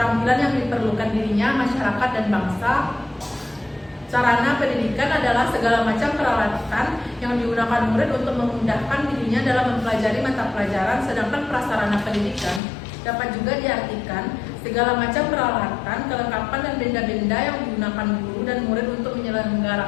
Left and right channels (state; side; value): drops out; right; at 12.6 s